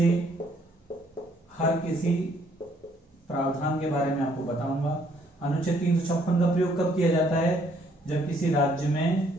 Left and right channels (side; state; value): both; normal; correlation 0.66